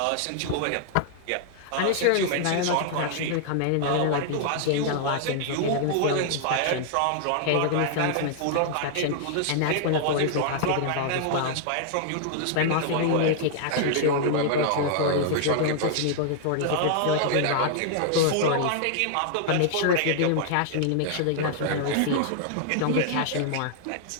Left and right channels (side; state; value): both; different; correlation -0.01